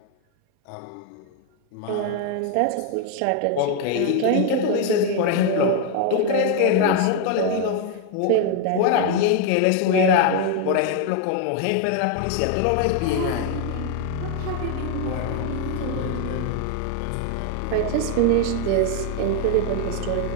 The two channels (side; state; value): both; different; correlation 0.01